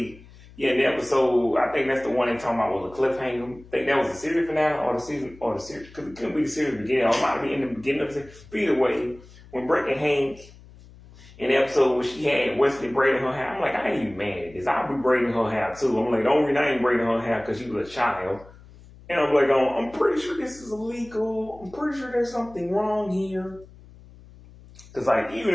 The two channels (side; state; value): left; noise; hum, 22 dB below the sound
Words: yeah, the episode, I think that's the one they're talking about was a cliffhanger. I think that was the series finale or the series, because it couldn't be the series beginning, or it might be in the beginning of the series. But either way, when Breck and Hank, in the episode where she had Wesley braiding her hair, I'm like, I ain't even mad at this. I'll be braiding her hair too. I'm like, the only reason I ain't braiding her hair because she was a child. And I'm like, I'm pretty sure this is illegal. I'm pretty sure there's something wrong here. Because, like,